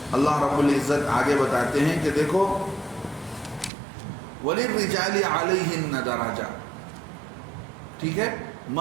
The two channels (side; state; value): left; drops out; at 3.7 s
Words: اللہ رب العزت آگے بتاتے ہیں کہ دیکھو وَلِلرِّجَالِ عَلَيْهِنَّ دَرَجَةٌ, ٹھیک ہے,